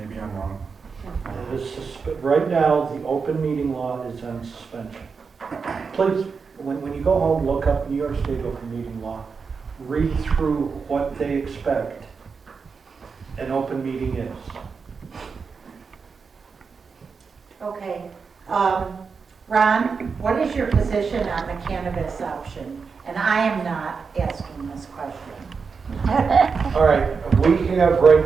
maybe I'm wrong. It is right now, the open meeting law is on suspension. Please, when you go home, look up New York State open meeting law. Read through what they expect an open meeting is. Okay. Ron, what is your position on the cannabis option? And I am not asking this question. All right, we have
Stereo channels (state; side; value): quieter; left; 5.3 dB